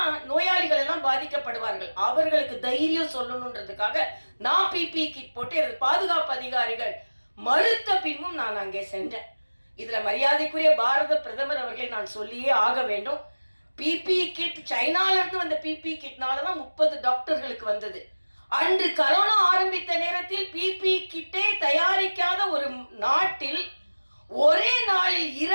நோயாளிகள் எல்லாம் பாதிக்கப்படுவார்கள், அவர்களுக்கு தைரியம் சொல்லணுன்றதுக்காக நான் பிபி கிட் போட்டு எனது பாதுகாப்பு அதிகாரிகள் மறுத்த பின்பும் நான் அங்கே சென்றேன். இதுல மரியாதைக்குரிய பாரத பிரதமர் அவர்களை நான் சொல்லியே ஆக வேண்டும். பிபி கிட் சைனால இருந்து வந்த பிபி கிட்னாலதான் 30 டாக்டர்களுக்கு வந்தது. அன்று கரோனா ஆரம்பித்த நேரத்தில் பிபி கிட்டே தயாரிக்காத ஒரு நாட்டில் ஒரே நாளில்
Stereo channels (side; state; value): both; inverted; correlation -1.00